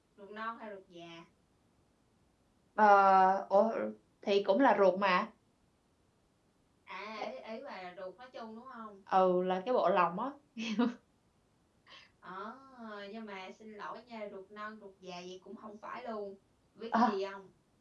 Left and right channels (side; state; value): both; identical; correlation 1.00